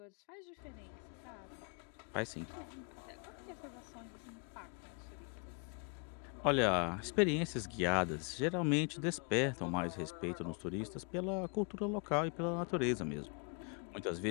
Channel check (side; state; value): right; quieter; 37.8 dB